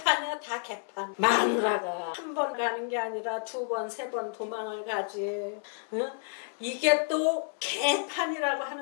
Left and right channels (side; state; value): right; silent; 58 dB below the other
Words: 다 개판. 마누라가 한 번 가는 게 아니라 2번, 3번 도망을 가지. 응? 이게 또 개판이라고